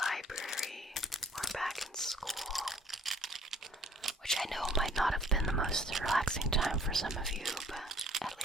or back in school, which I know might not have been the most relaxing time for some of you, but at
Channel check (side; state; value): both; normal; correlation 0.56